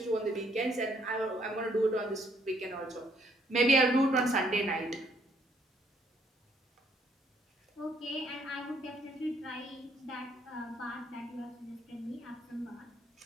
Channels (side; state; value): both; normal; correlation 0.67